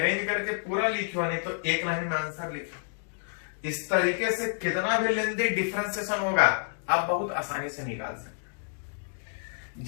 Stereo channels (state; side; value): silent; right; digital silence